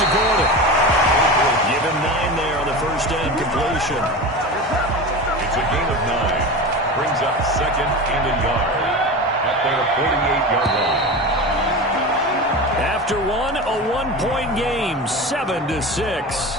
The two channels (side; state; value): both; normal; correlation 0.27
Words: Gordon. Give him 9 there on the first down completion. It's a gain of 9. Brings up 2nd and a yard at their 48-yard line. After one, a 1-point game, 7-6.